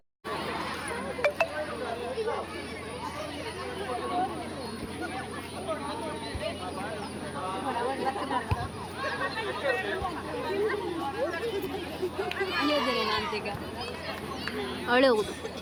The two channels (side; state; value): both; identical; correlation 1.00